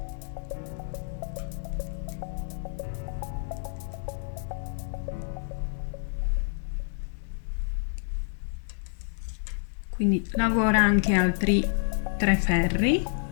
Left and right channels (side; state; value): right; silent; digital silence